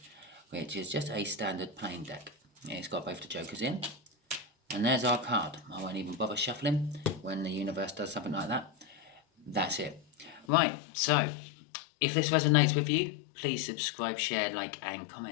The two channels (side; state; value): right; drops out; at 10.5 s